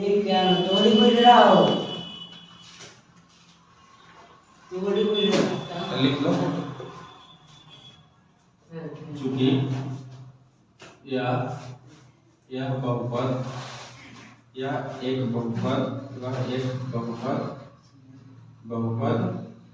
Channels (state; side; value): identical; both; correlation 1.00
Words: क्या थोड़ी कोई रहा हो थोड़ी कोई लिख लो। चूंकि यह बहुपद या एक बहुपद